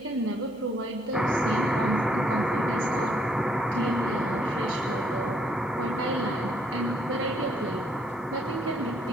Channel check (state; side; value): noise; left; hum, 29 dB below the sound